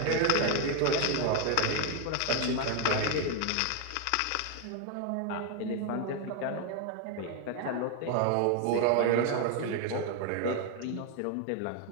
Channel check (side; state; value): both; different; correlation 0.01